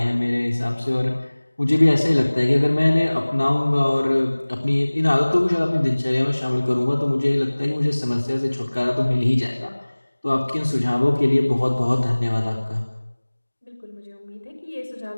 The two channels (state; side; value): inverted; both; correlation -1.00